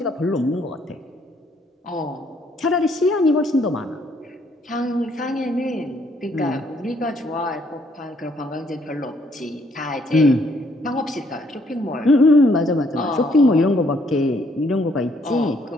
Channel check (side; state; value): both; normal; correlation 0.68